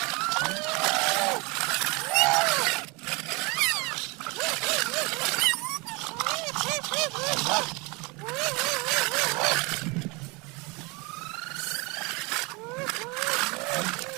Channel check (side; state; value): left; quieter; 27.4 dB